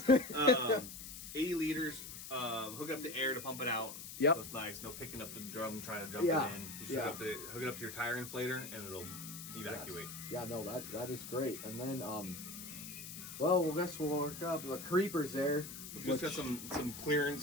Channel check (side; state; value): left; noise; hiss, 10 dB below the sound